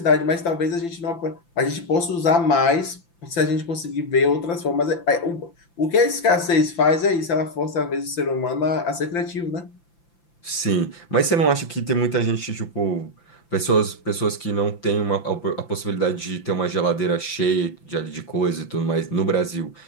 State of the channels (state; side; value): late; right; 5.9 ms